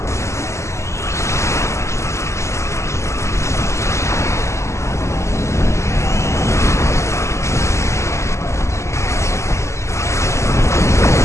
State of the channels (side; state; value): right; late; 0.14 ms